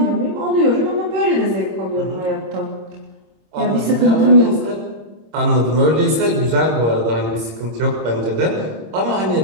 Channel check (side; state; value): left; late; 26 ms